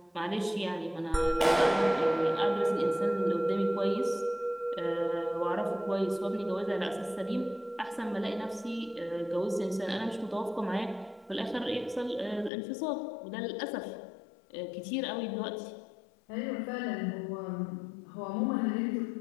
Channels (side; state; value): right; drops out; at 12.5 s